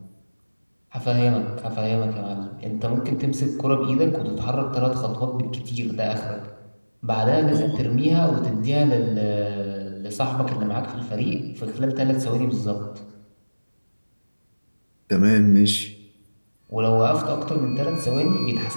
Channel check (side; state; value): both; inverted; correlation -1.00